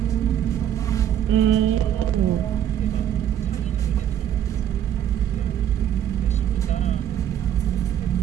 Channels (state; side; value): quieter; left; 10.3 dB